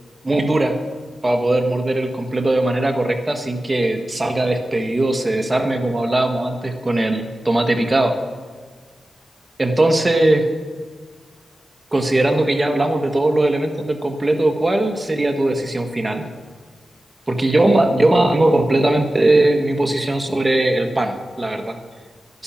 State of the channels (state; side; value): normal; both; correlation 0.95